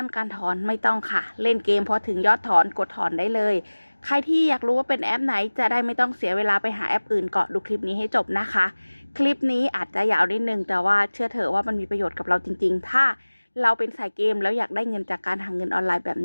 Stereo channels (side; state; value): both; inverted; correlation -1.00